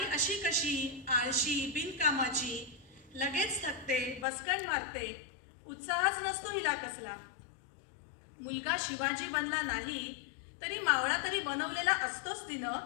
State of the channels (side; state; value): right; drops out; at 4.2 s